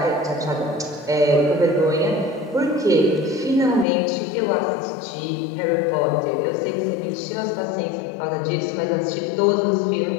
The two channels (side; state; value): right; drops out; at 3.9 s